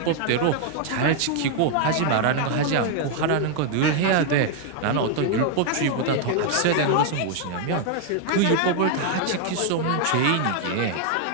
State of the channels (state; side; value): different; both; correlation 0.00